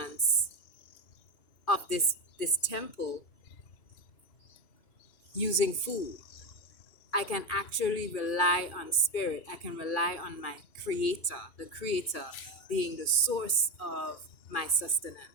of this temple using food. I can actually rely on spirit. I can rely on my creator, the creator being the source of my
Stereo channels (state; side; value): late; right; 2.4 ms